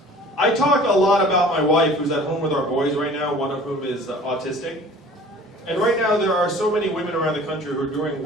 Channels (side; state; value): both; normal; correlation 0.47